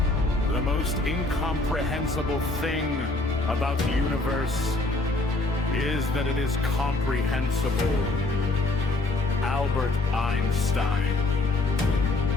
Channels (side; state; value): right; quieter; 3.1 dB